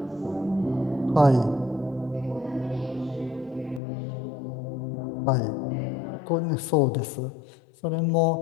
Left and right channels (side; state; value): right; drops out; at 3.8 s